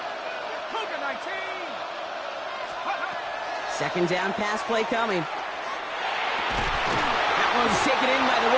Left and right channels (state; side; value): identical; both; correlation 1.00